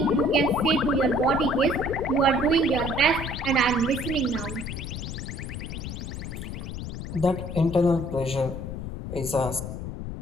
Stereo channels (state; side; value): noise; left; rumble, 7 dB below the sound